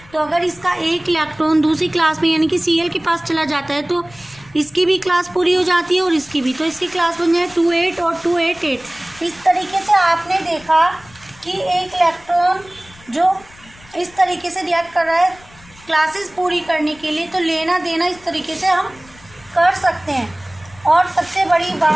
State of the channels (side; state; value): left; noise; rumble, 25 dB below the sound